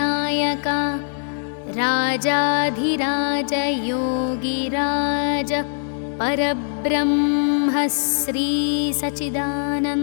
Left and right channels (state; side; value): silent; right; 64 dB below the other